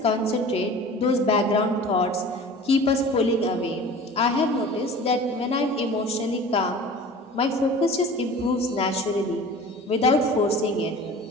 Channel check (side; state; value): both; normal; correlation 0.40